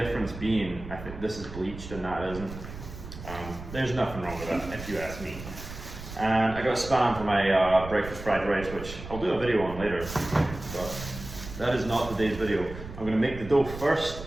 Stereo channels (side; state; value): right; noise; rumble, 12 dB below the sound